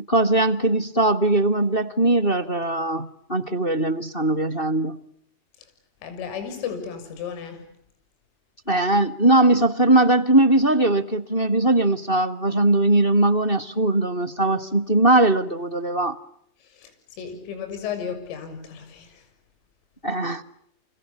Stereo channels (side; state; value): right; late; 2.6 ms